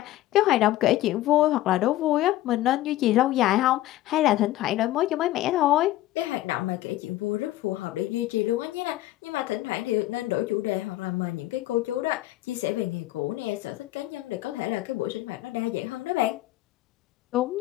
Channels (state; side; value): quieter; right; 15.5 dB